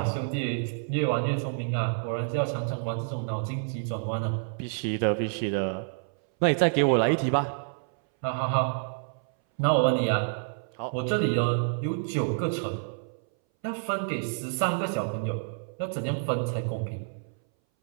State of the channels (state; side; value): silent; left; 59 dB below the other